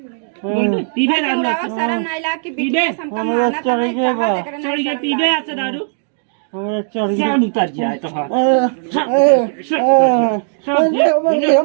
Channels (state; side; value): silent; left; digital silence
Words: पीबे दारू शर्म नहीं लाग कि पीबे हमका माना तो नहीं चढ़ गया पीबे ऐसे दारू हमरा चढ़ गया जान उतर जाए तो हाँ